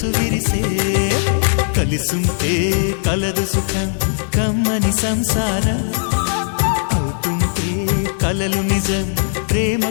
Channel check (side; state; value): right; silent; digital silence